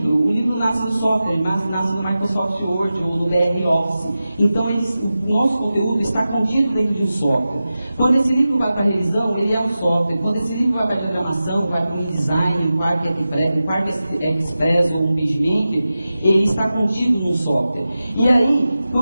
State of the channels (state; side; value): inverted; both; correlation -0.94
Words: livro nasce no software, nasce no Microsoft Word ou no BR Office. Então, o nosso conteúdo está contido dentro de um software. Quando esse livro vai para a revisão, ele é um software. Quando esse livro vai para a diagramação, vai para o InDesign, um Quark Express ou um PageMaker, ele está contido num software. E aí,